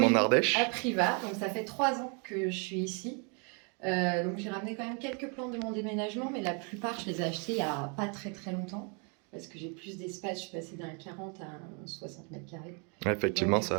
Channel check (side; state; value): left; quieter; 36.0 dB